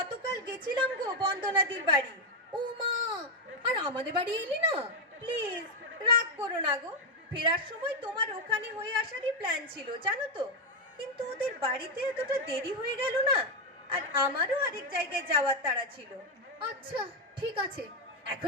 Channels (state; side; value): normal; both; correlation 0.04